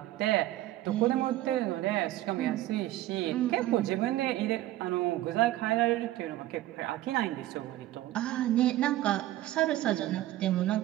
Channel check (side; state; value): left; quieter; 15.1 dB